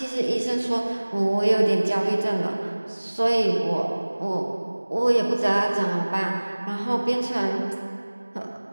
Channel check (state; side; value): inverted; both; correlation -1.00